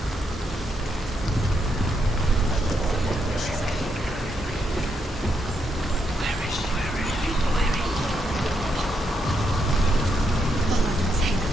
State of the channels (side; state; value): both; normal; correlation 0.79